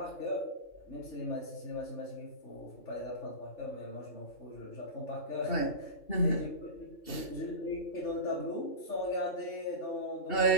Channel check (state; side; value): late; right; 2.7 ms